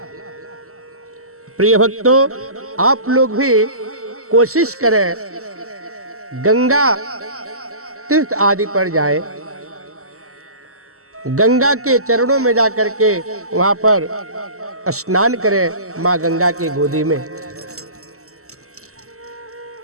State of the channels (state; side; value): late; left; 0.64 ms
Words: प्रिय भक्तों, आप लोग भी कोशिश करें, गंगा तीर्थ आदि पर जाएं, गंगा के चरणों में जाकर के वहां पर स्नान करें माँ गंगा के गोदी में।